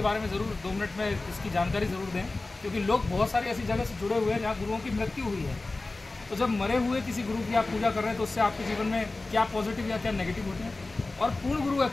बारे में ज़रूर 2 मिनट में इसकी जानकारी ज़रूर दें, क्योंकि लोग बहुत सारी ऐसी जगह से जुड़े हुए हैं जहाँ गुरुओं की मृत्यु हुई है। तो जब मरे हुए किसी गुरु की आप पूजा कर रहे हैं तो उससे आपके जीवन में क्या पॉजिटिव या क्या नेगेटिव होते हैं, और पूर्ण गुरु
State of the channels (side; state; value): right; quieter; 3.2 dB